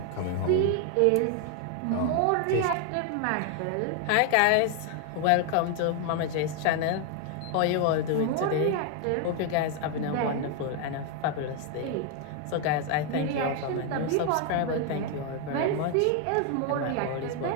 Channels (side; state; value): both; different; correlation 0.01